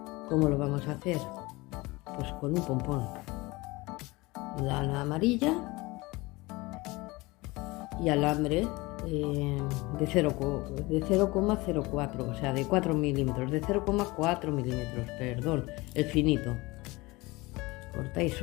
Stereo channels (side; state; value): right; quieter; 22.5 dB